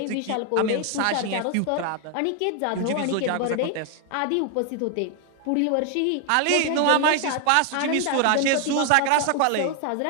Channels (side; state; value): both; different; correlation 0.00